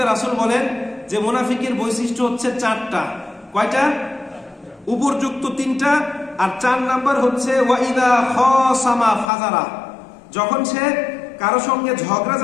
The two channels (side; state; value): right; drops out; at 9.3 s